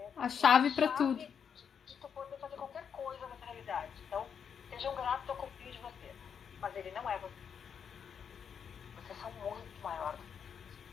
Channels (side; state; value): right; quieter; 7.3 dB